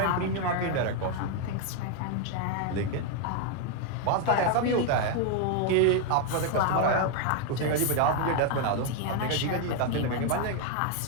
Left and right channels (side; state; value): both; different; correlation 0.00